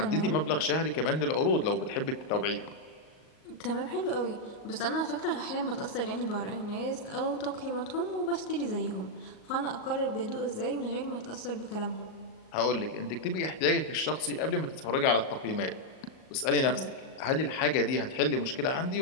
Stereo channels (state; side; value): late; right; 38 ms